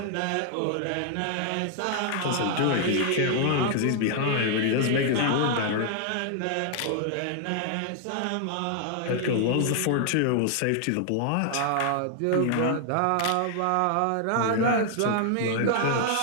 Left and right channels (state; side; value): different; both; correlation 0.00